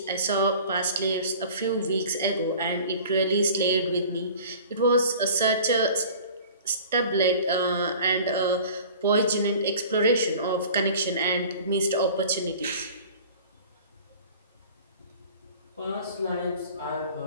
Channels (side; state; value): both; inverted; correlation -0.44